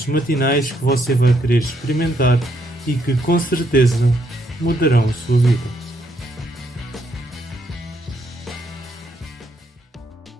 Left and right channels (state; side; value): normal; both; correlation 0.73